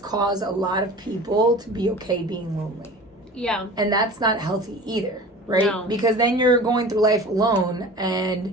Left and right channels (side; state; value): both; normal; correlation 0.38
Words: a lot of people to be okay being lonely. Yeah. And that's not healthy either, right? No. Because then you're going through life alone